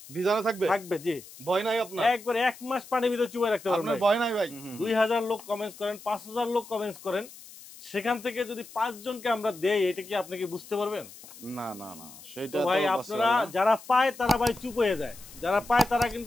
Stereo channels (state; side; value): noise; left; hiss, 18 dB below the sound